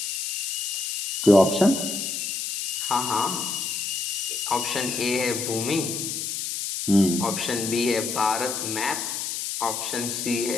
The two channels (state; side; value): noise; left; hiss, 3 dB below the sound